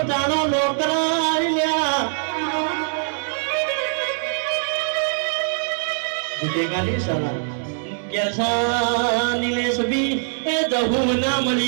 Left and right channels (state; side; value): silent; left; digital silence